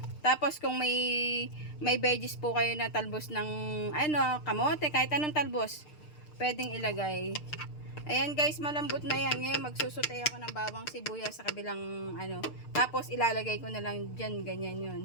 Tapos kung may veggies po kayo na talbos ng ano, kamote, kahit anong talbos, pwedeng ilagay. Ayan guys, malambot na yan. Ngayon magsusutay ako ng bawang sibuyas sa kabilang ano. Tapos ilalagay ko na lang dyan, ganyan yun.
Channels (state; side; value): late; right; 6.6 ms